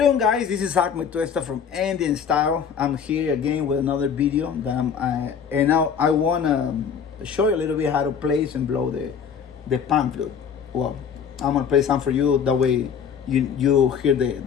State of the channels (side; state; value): right; quieter; 7.2 dB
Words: guys, this is Ahmed Tuesta from Andean Style. I'm here again with another video that and now I wanna show you a little bit how to place and blow the pan flute. Well, I'm gonna play some for you, that way you hear